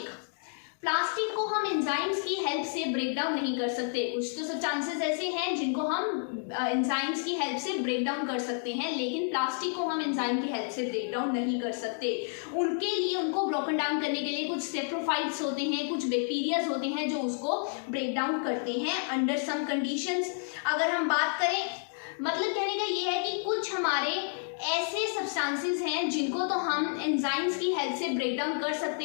को हम एंजाइम्स की हेल्प से ब्रेक डाउन नहीं कर सकते। कुछ तो सब्सटेंसेस ऐसे हैं जिनको हम एंजाइम्स की हेल्प से ब्रेक डाउन कर सकते हैं, लेकिन प्लास्टिक को हम एंजाइम की हेल्प से ब्रेक डाउन नहीं कर सकते। उनके लिए उनको ब्रोकन डाउन करने के लिए कुछ सेप्रोफाइट्स होते हैं, कुछ बैक्टीरियाज होते हैं जो उसको ब्रेक डाउन करते हैं अंडर सम कंडीशंस। अगर हम बात करें मतलब कहने का ये है कि कुछ हमारे ऐसे सब्सटेंसेस हैं जिनको तो हम एंजाइम्स की हेल्प से ब्रेक डाउन कर सकते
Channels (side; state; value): right; silent; 58 dB below the other